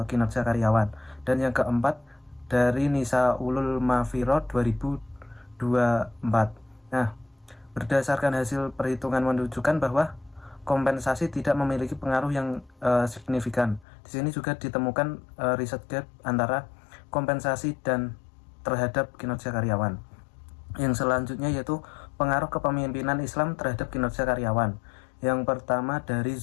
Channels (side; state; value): right; drops out; at 13.9 s